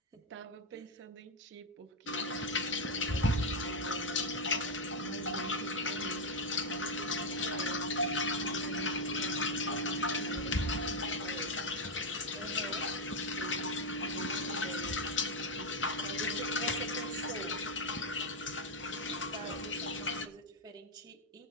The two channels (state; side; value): normal; both; correlation 0.02